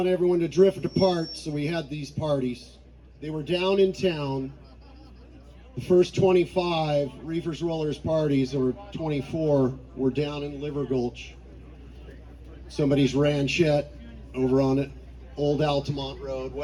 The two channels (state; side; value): identical; both; correlation 1.00